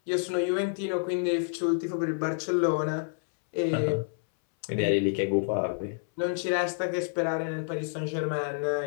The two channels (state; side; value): silent; right; 59 dB below the other